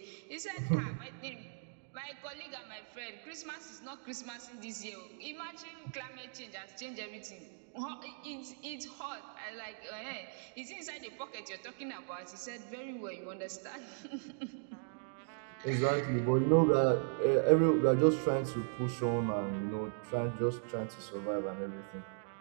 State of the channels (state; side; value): silent; left; digital silence